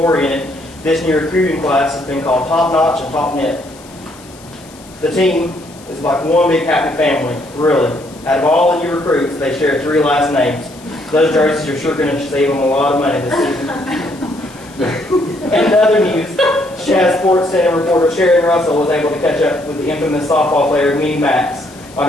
This new recruiting class has been called Top Notch and Top Net. The team is like one big happy family, really. Out of all the new recruits, they share 3 last names. Those jerseys are sure going to save them a lot of money this season. In other news, Shaz Sports Center reporter Sharon Russell was able to catch up with the infamous softball player Minnie Max on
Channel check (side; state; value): left; noise; hiss, 23 dB below the sound